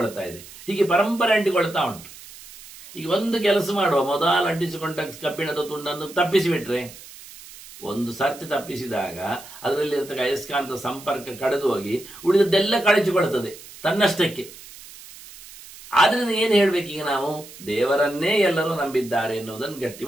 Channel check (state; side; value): noise; right; hiss, 18 dB below the sound